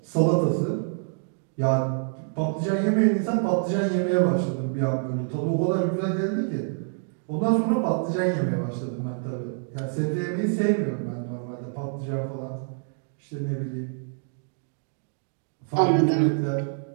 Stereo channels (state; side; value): silent; left; 58 dB below the other